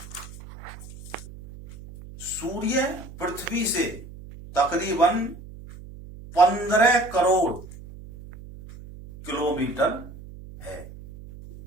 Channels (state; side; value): noise; right; hum, 16 dB below the sound